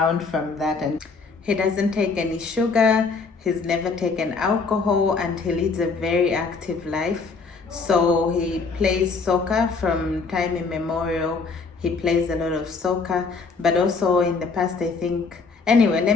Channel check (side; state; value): right; quieter; 4.5 dB